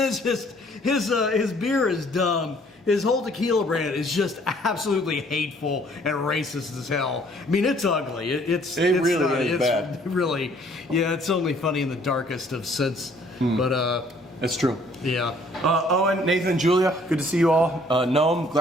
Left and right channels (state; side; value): normal; both; correlation 0.60